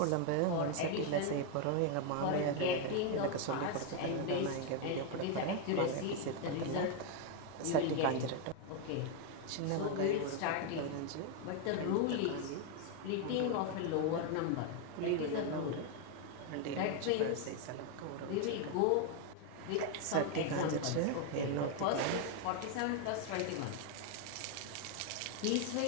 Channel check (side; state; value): both; different; correlation 0.01